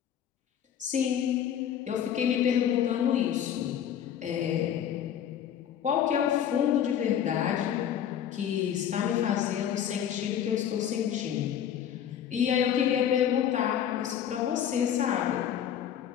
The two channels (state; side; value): quieter; right; 9.5 dB